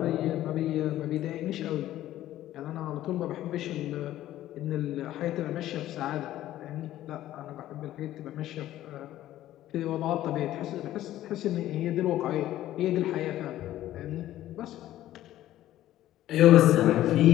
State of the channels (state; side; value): quieter; right; 13.7 dB